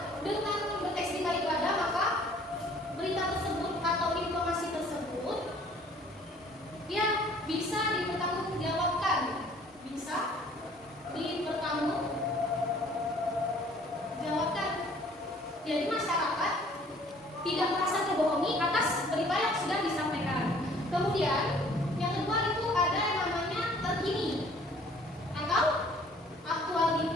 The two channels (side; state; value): both; normal; correlation 0.56